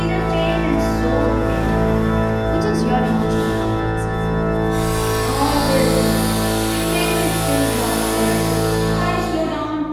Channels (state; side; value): identical; both; correlation 1.00